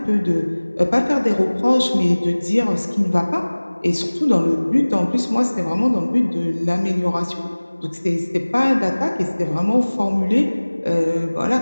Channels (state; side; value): inverted; both; correlation -1.00